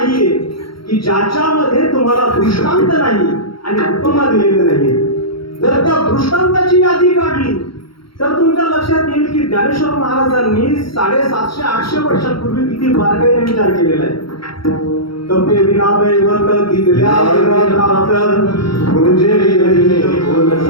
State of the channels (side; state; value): right; late; 0.74 ms